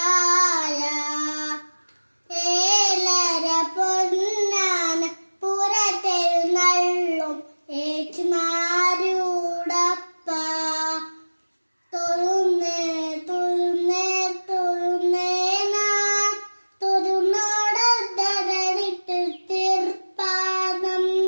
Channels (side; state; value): both; inverted; correlation -1.00